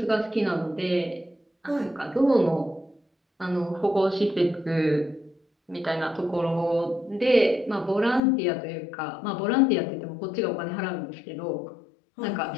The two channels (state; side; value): drops out; right; at 8.2 s